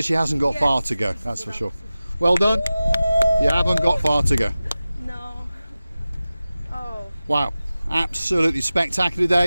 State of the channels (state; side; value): inverted; both; correlation -0.96